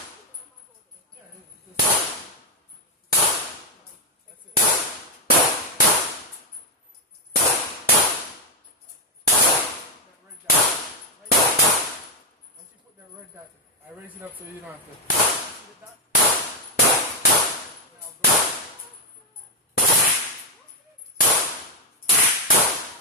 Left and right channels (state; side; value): normal; both; correlation 0.03